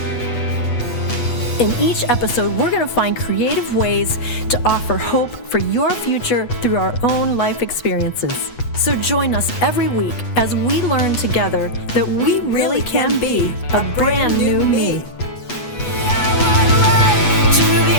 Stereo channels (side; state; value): right; late; 8.2 ms